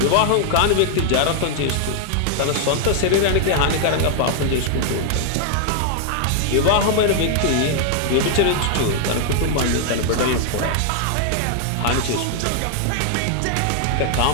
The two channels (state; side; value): different; both; correlation 0.00